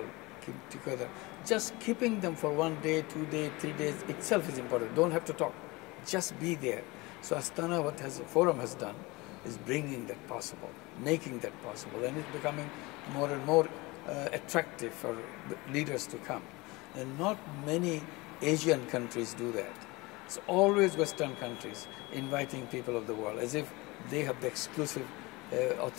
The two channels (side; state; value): right; quieter; 23.4 dB